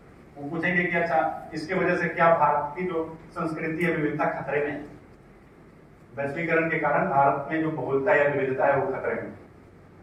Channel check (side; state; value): both; identical; correlation 1.00